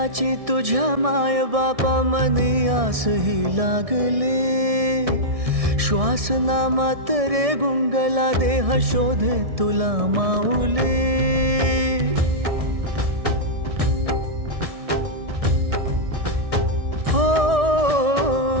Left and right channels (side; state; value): left; late; 1.6 ms